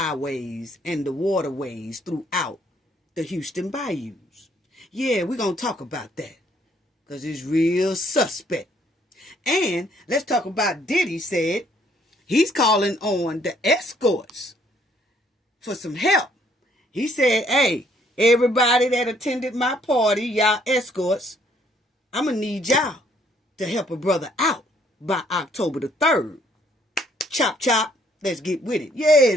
and the waterways throughout the Houston bayous? Yeah, we're going to talk about that because it's real suspect. And let's talk about Diddy said he's calling on the escorts for some help. He said, hey, everybody that attended my party, y'all escorts, I'm going to need y'all to help a brother out by October the 3rd. Chop, chop. Let's get with it.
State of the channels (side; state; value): both; normal; correlation 0.65